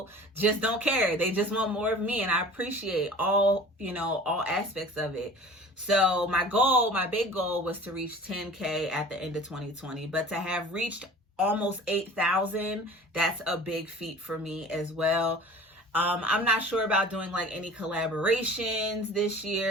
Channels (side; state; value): both; normal; correlation 0.42